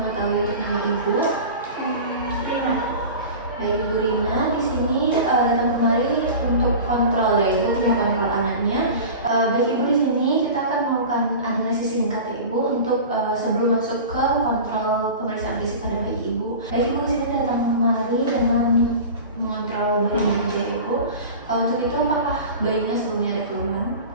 mengetahui nama Ibu? Rina. Baik Ibu Rina, di sini datang kemari untuk kontrol ya Ibu, kontrol anaknya. Baik Ibu, di sini kita akan melakukan analisis singkat ya Ibu untuk sebelum masuk ke kontrol pemeriksaan fisik pada bayi Ibu. Baik Ibu, di sini datang kemari dengan mengontrol bayinya ya Ibu. Untuk itu apakah bayinya sebelumnya ada keluhan?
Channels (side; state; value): both; inverted; correlation -0.34